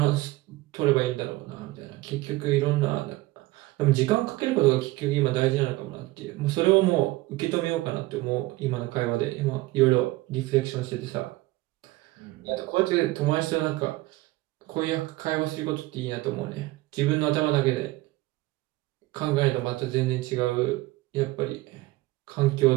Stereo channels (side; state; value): left; quieter; 19.6 dB